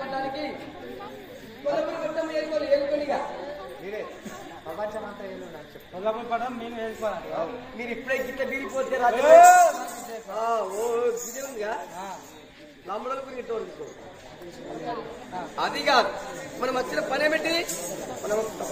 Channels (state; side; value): identical; both; correlation 1.00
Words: కొల్లపట్టం ఏలుకొనిగా మీరే ప్రపంచం అంతా ఏళ్ళు కొల్లపూర్ పడడం మేము వేసుకోవాలి. మీరు ఇప్పుడే గిట్ట బీరిపోతే రాజు ఉందిగా నమ్మడానికి గిట్ట తీసుకో. అది కాదు, మనం వచ్చిన పని ఏమిటి, మనం